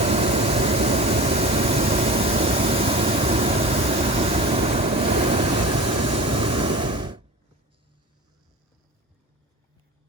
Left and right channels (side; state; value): both; normal; correlation 0.35